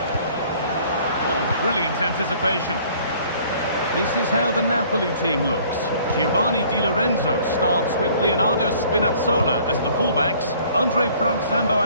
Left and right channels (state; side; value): inverted; both; correlation -0.55